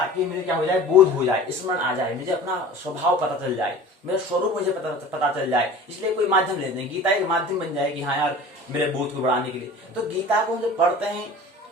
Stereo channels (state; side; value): normal; both; correlation 0.41